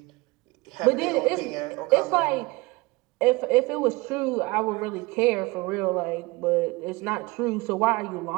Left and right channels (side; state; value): left; quieter; 23.4 dB